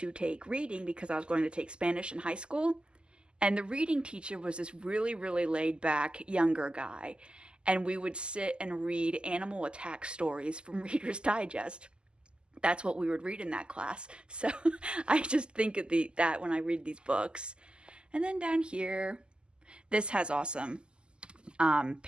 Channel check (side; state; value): left; late; 0.049 ms